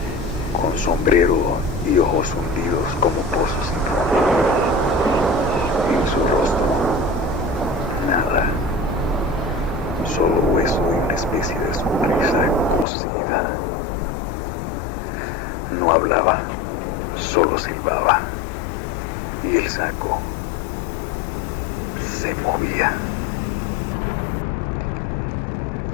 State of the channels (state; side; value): drops out; right; at 12.9 s